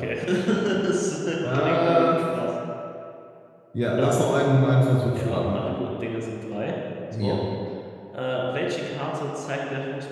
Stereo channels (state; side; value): identical; both; correlation 1.00